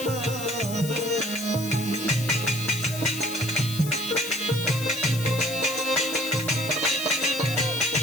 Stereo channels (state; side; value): noise; left; hiss, 10 dB below the sound